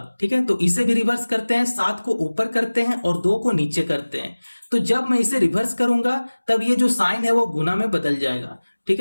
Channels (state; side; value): inverted; both; correlation -1.00